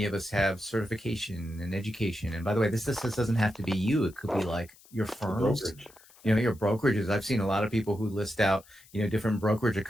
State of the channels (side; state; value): left; noise; hiss, 25 dB below the sound